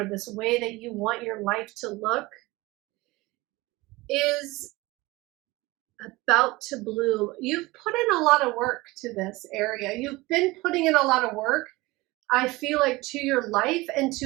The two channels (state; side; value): quieter; left; 21.1 dB